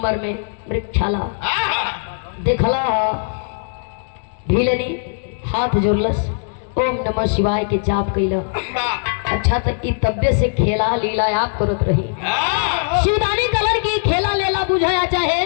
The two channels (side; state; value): right; silent; digital silence